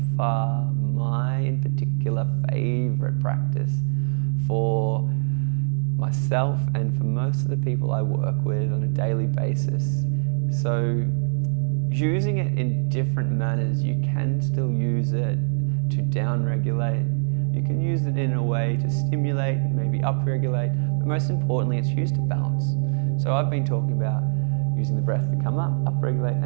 far my, in particular, favorite practice for myself and for most of the people I work with on a daily basis. So using it in different manners, you can still use it to down-regulate. You can use it in a way to stimulate, maybe up-regulate, but most importantly, it's used to balance. So I've been talking about using the breath to come up, up-regulate,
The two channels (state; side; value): silent; left; 63 dB below the other